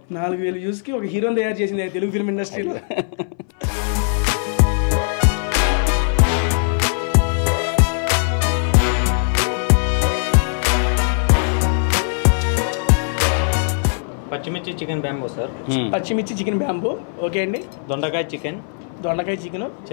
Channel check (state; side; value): silent; right; 62 dB below the other